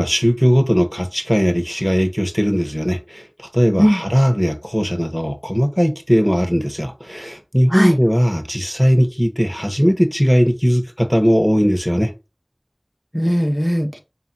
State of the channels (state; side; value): identical; both; correlation 1.00